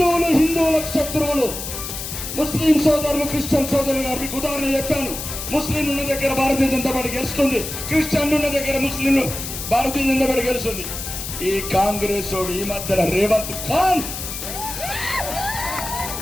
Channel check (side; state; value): left; noise; hiss, 7 dB below the sound